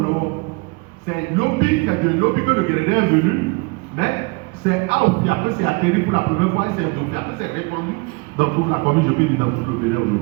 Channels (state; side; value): quieter; left; 28.3 dB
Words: c'est Lobi que le Guérédin est venu, mais c'est à Ofia que c'est atterri pour la première fois et c'est d'Ofia que c'est répandu dans toute la commune, je peux dire dans tout le Bénin